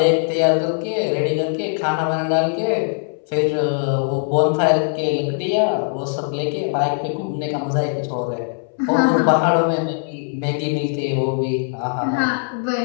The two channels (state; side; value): silent; right; 63 dB below the other